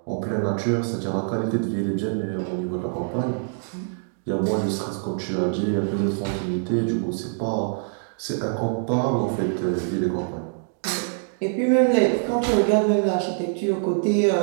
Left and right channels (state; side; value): silent; left; digital silence